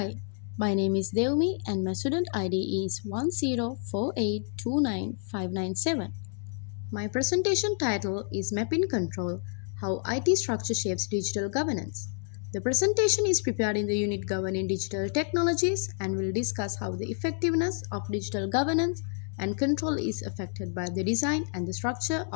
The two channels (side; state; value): right; silent; 58 dB below the other